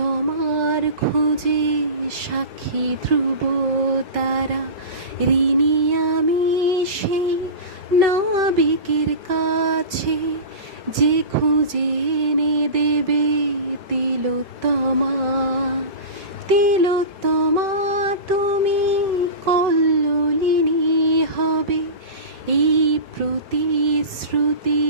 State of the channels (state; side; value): late; left; 5.3 ms